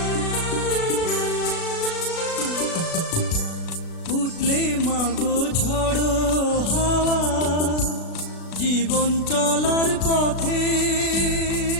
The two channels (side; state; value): right; late; 36 ms